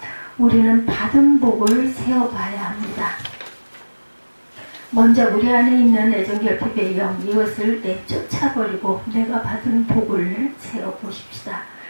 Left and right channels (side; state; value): both; inverted; correlation -1.00